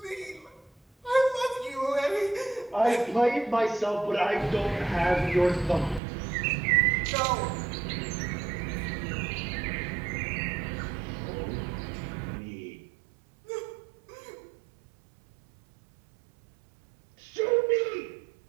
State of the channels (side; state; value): left; drops out; at 6.0 s